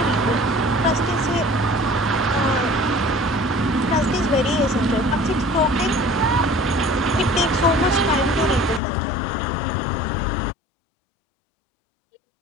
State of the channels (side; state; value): right; drops out; at 8.8 s